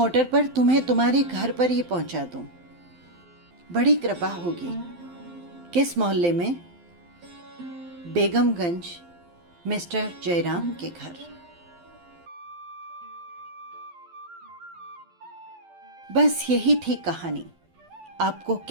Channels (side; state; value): left; late; 12 ms